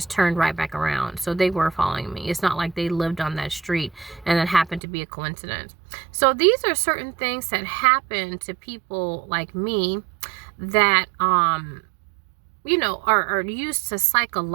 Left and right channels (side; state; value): left; drops out; at 4.8 s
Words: turned right back around. So they were following me. It's not like they lived on that street and that happened to be a coincidence. So these are certain things that happen to people like me that are used to